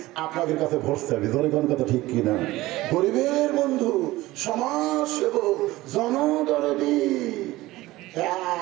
আপনাদের কাছে ভোট চাইবে। ধরে কোন কথা ঠিক কিনা? গরিবের বন্ধু, সমাজ সেবক, জনদরদি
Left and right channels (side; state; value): left; quieter; 18.1 dB